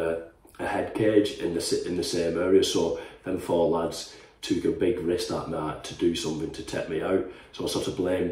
head cage in the same area. So them 4 lads took a big risk that night to do something to take me out. So I sort of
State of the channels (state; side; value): identical; both; correlation 1.00